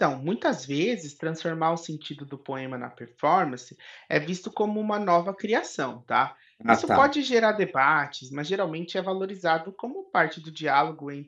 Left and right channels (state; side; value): identical; both; correlation 1.00